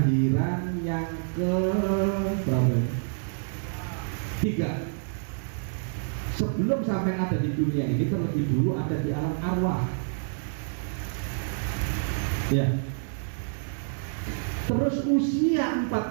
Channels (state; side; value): silent; left; digital silence